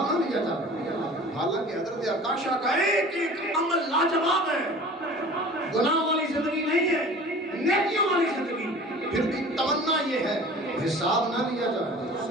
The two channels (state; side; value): normal; both; correlation 0.42